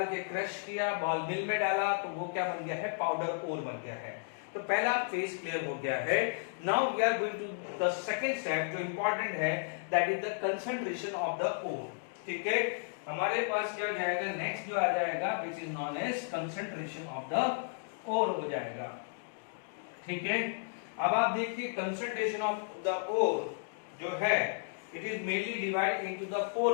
के क्रश किया, बॉल मिल में डाला तो वो क्या बन गया है पाउडर ओर बन गया है। तो पहला फेज क्लियर हो गया है। Now we are going to the second step जो इंपॉर्टेंट है, that is the concentration of the ore, ठीक है। हमारे पास क्या जाएगा नेक्स्ट जो आ जाएगा which is non as concentration of the ore हो जाएगा, ठीक है। अब आप देखिए कंसंट्रेशन ऑफ द ओर जो है it is mainly divide into the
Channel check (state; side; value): silent; right; digital silence